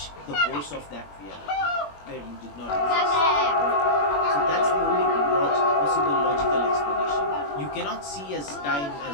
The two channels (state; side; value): late; right; 21 ms